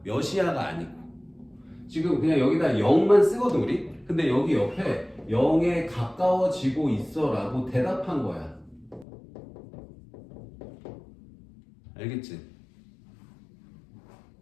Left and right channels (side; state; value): right; drops out; at 9.1 s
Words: 몇이야가 아니고. 지금 그냥 여기다 0만 쓰거든 우리. 근데 여기 옆에 0에 가까워지고 있어라고 대답한 거야. 알겠지?